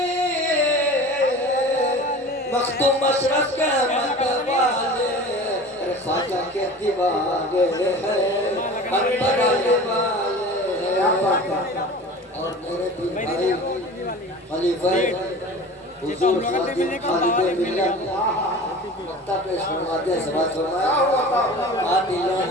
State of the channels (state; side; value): normal; both; correlation 0.38